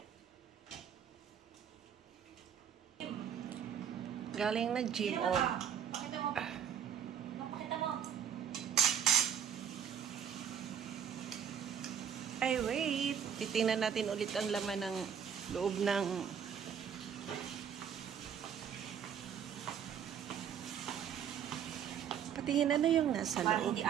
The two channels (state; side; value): quieter; left; 8.4 dB